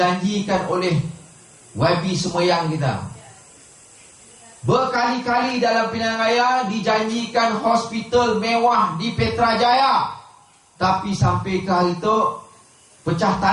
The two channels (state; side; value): identical; both; correlation 1.00